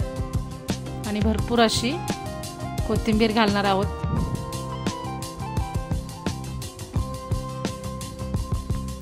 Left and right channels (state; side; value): identical; both; correlation 1.00